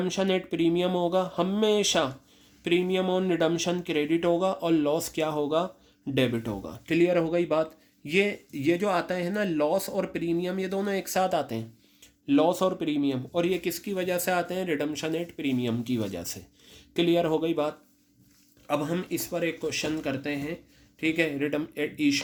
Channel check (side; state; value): both; identical; correlation 1.00